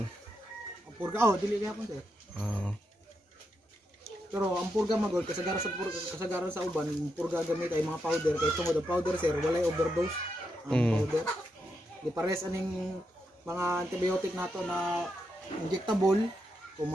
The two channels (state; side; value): normal; both; correlation 0.83